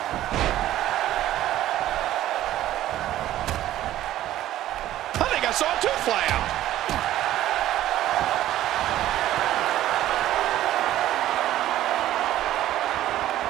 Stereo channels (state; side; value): quieter; left; 13.6 dB